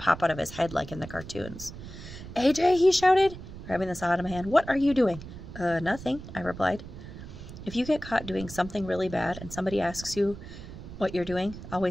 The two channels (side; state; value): right; noise; rumble, 13 dB below the sound